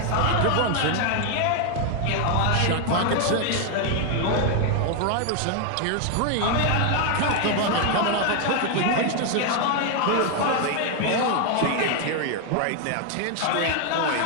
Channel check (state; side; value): different; both; correlation 0.01